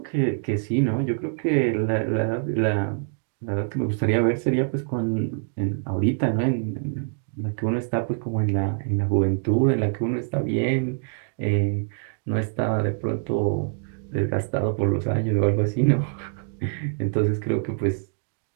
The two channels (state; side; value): silent; left; digital silence